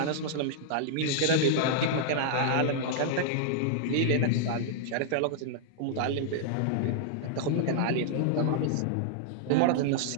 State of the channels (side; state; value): both; different; correlation -0.01